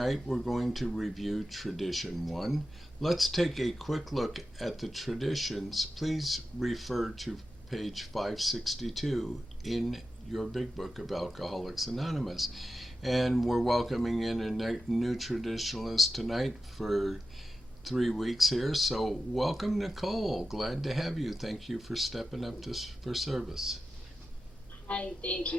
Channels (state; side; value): normal; both; correlation 0.91